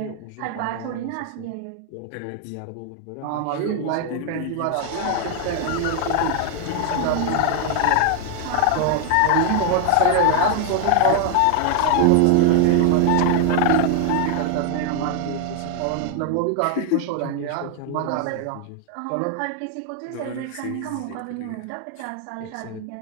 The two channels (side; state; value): both; different; correlation 0.00